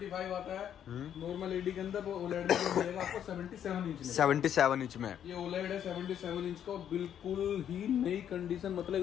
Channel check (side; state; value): right; quieter; 9.6 dB